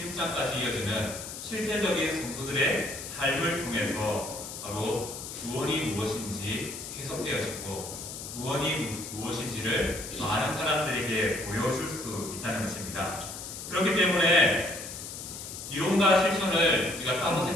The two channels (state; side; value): noise; left; hiss, 9 dB below the sound